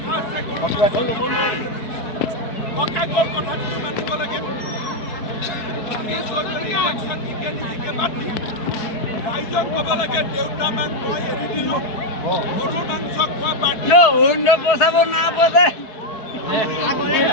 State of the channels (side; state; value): right; late; 4.6 ms